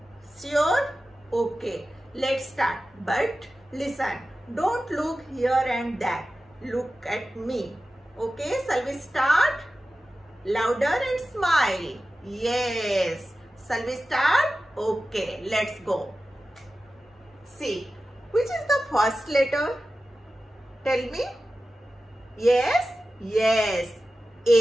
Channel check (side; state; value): both; normal; correlation 0.94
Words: Sure? Okay. Let's start. But listen, don't look here and there. Look at me. Okay, shall we start? Louder and smile. Yes. Shall we start? Okay, let's go. See, which is the first letter? Tell me. Yes, yes.